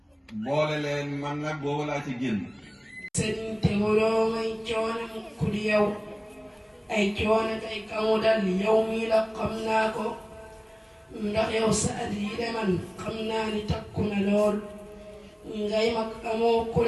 boole leen man nag boobu laa ci génn. sëriñ te waroo may coono mukk di yow ay coono tey kamu dal yow mii la xam naa ko ndax yow sa at yi de man xam naa ni takku na lool ngay mag amoo ku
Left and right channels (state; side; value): identical; both; correlation 1.00